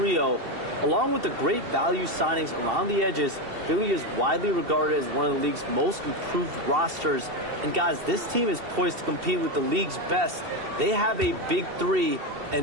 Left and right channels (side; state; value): left; late; 2.7 ms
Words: along with the great value signings around the edges. Philly is widely regarded as one of the league's most improved rosters. And guys, this team is poised to compete with the league's best. They have a big 3.